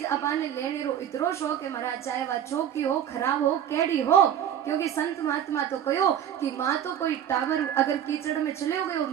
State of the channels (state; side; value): quieter; left; 9.8 dB